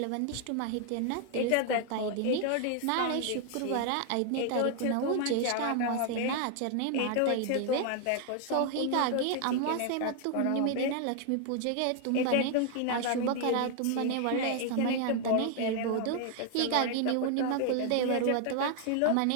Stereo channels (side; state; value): both; different; correlation 0.00